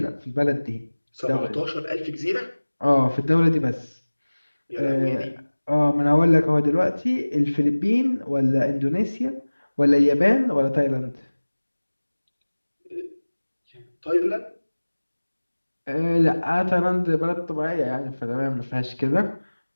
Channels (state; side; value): inverted; both; correlation -1.00